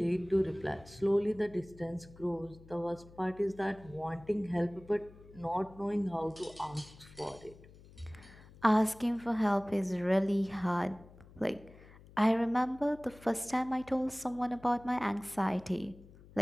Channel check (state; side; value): noise; left; hum, 21 dB below the sound